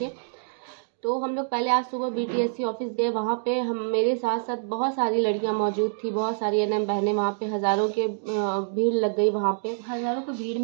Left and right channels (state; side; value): silent; left; digital silence